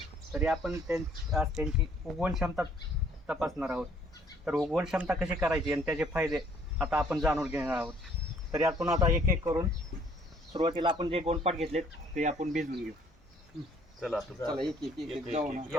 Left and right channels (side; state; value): both; normal; correlation 0.61